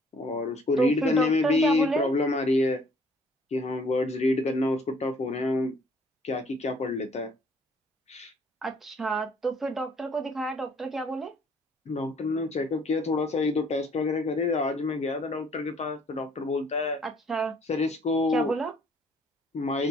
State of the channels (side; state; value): both; normal; correlation 0.61